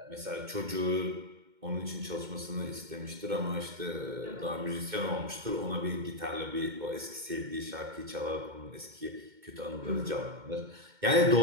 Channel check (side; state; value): left; late; 2.1 ms